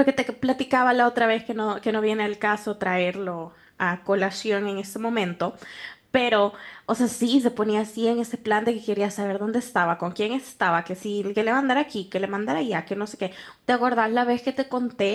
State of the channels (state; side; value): identical; both; correlation 1.00